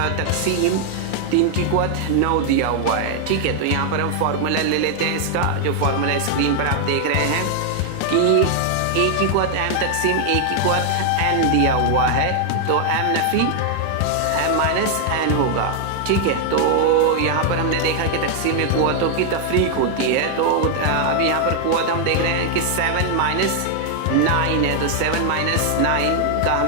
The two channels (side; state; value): both; different; correlation 0.00